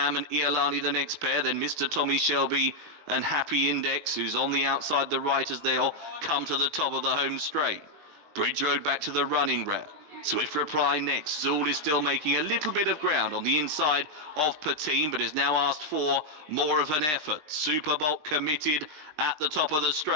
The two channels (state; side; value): late; left; 20 ms